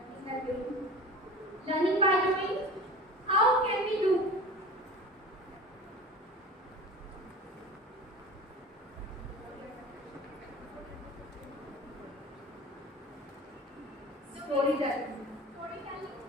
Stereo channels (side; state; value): both; normal; correlation 0.36